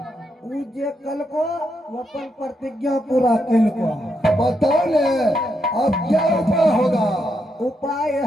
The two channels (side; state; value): both; normal; correlation 0.81